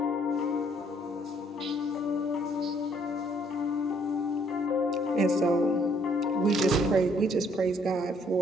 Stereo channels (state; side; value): normal; both; correlation 0.65